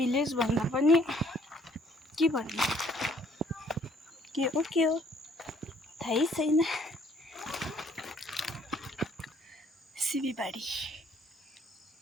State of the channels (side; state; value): both; normal; correlation 0.62